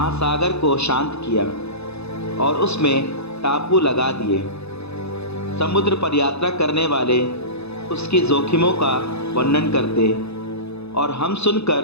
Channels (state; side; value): late; right; 0.79 ms